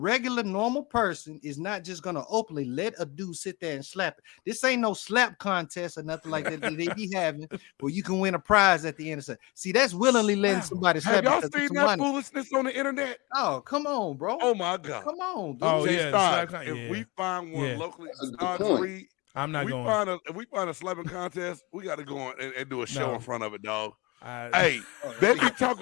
normal person is not just gonna openly let a dude sit there and slap it. This ain't no slap contest or nothing like that they be having where you can win a prize at the end of it. See, that's willingly letting somebody slap. Have y'all seen that foolishness on the internet? Oh, come on, bro. Oh my God. Come on, dude. Oh, if we find one locally, I'm not going. If we find a slapping contest, we got to go on and do a show in front of it, dog. Hey, they be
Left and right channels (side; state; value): right; quieter; 24.9 dB